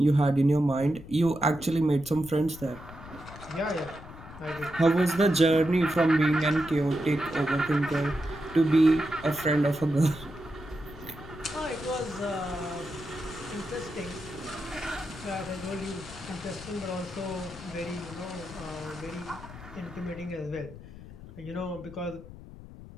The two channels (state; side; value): noise; left; rumble, 16 dB below the sound